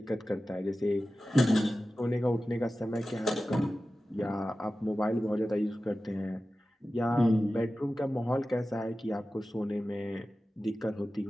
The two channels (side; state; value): both; normal; correlation 0.95